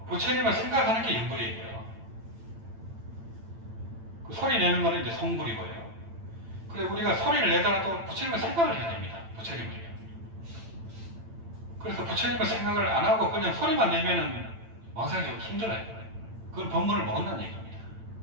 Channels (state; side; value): late; left; 8.9 ms